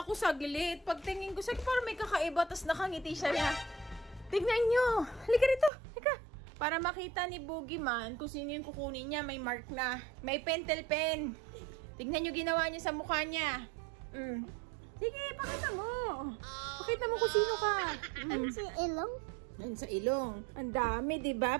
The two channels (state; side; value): drops out; left; at 5.7 s